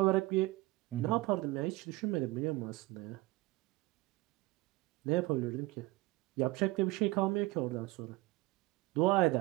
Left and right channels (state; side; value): quieter; left; 20.4 dB